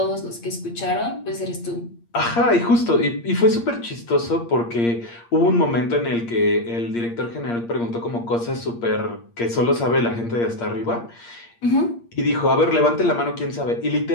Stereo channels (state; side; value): late; right; 8.6 ms